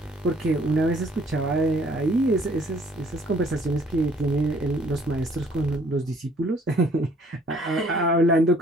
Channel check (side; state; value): both; normal; correlation 0.60